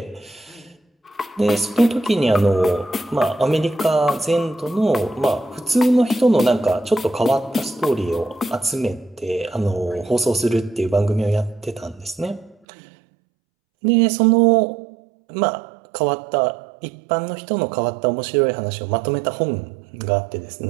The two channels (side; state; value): left; drops out; at 12.6 s